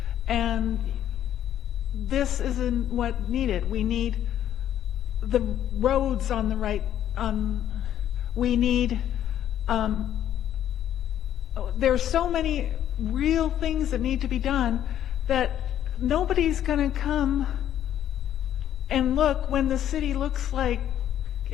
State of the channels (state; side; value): quieter; right; 11.0 dB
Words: and this isn't what needed. We need the roads on the right, we need, there's so many real things that need to be done, that nobody's going to come and look when the city looks like